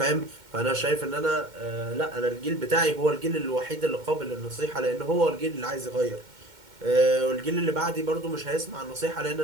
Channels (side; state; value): left; late; 2.1 ms